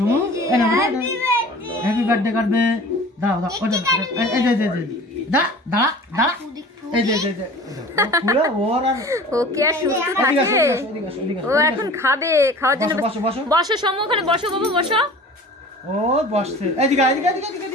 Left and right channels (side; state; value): both; normal; correlation 0.42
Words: হ্যাপি বার্থডে করবে, দাঁড়াও এই যে দাঁড়া এই যে ওর আর ও কি আর সুস্থ থাকে? ও এখন খাবে, খাওয়ার জন্য বসো সমু, ওখানে বসো বাবা বসো। ও বসছে, এদিকে